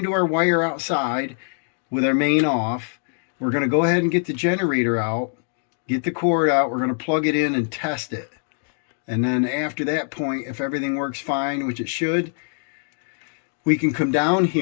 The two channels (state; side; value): silent; right; 59 dB below the other